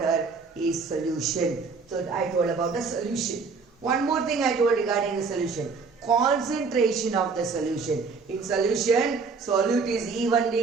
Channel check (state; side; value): quieter; left; 4.8 dB